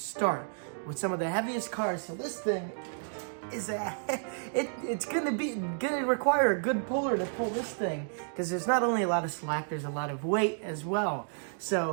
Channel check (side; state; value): left; silent; digital silence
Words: with some of the heaviest cars. So this thing is it's gonna require a good puller to pull this thing, because there's not only a lot of slack, there's a lot of weight as well.